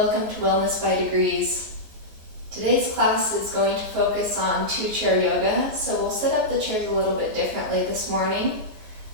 to Wellness by Degrees. Today's class is going to focus on two-chair yoga, so we'll set up the chairs a little bit differently this morning.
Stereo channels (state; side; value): late; left; 14 ms